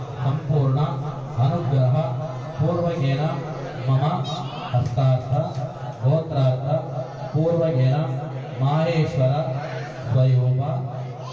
संपूर्ण अनुग्रह पूर्वकेन मम हस्तार्थ गोत्रार्थ पूर्वकेन माहेश्वर स्वरूप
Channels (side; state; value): both; identical; correlation 1.00